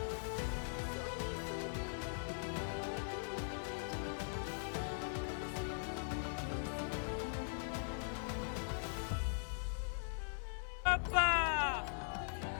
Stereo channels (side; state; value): right; silent; 50 dB below the other